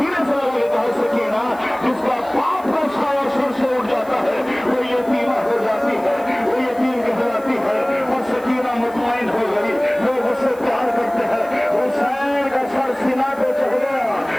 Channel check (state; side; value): noise; right; hiss, 24 dB below the sound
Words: से लगे कहा सकीना जिसका बाप का साया सिर से उठ जाता है वो यतीमा हो जाती है, वो यतीम कहलाती है। और सकीना मुतमईन हो गई, लोग उससे प्यार करते हैं। हुसैन का सर सीना पे चढ़ गया,